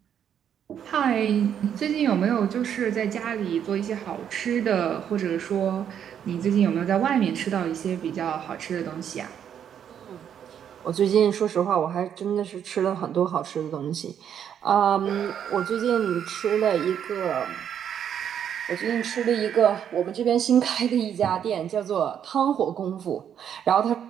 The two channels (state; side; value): quieter; left; 8.9 dB